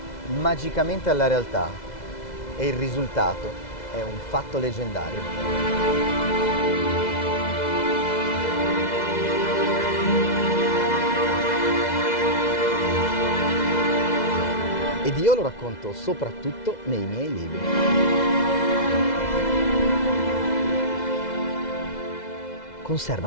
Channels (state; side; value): late; right; 2.0 ms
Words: magicamente alla realtà e il risultato è un fatto leggendario. Ed io lo racconto soprattutto nei miei libri.